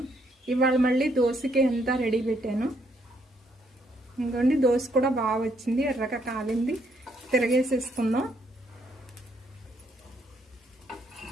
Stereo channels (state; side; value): normal; both; correlation 0.72